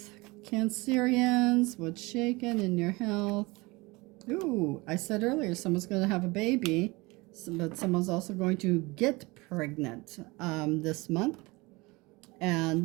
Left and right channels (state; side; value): quieter; left; 23.8 dB